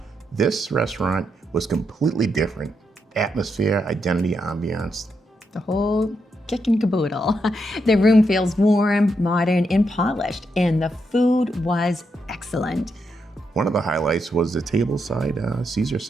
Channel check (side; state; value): both; normal; correlation 0.81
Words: This restaurant was completely different. Atmosphere, identity, ambiance. The whole kit and caboodle. The room feels warm, modern, and polished, and the food was excellent. One of the highlights was the tableside Caesar